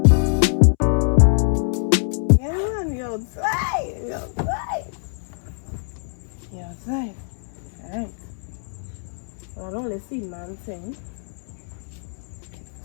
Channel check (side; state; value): right; silent; 63 dB below the other